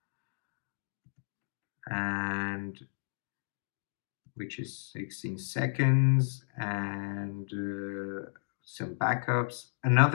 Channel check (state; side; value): silent; right; digital silence